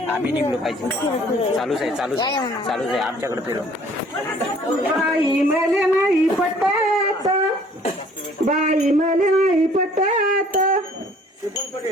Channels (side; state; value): both; normal; correlation 0.56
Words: आम्ही निघलो पाहिजे. चालूच आहे आमच्याकडे फिरो. बाई मले नाही पटत, बाई मले नाही पटत.